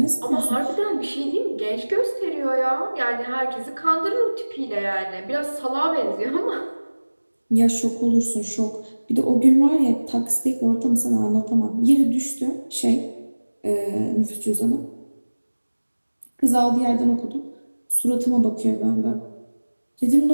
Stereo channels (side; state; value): both; inverted; correlation -1.00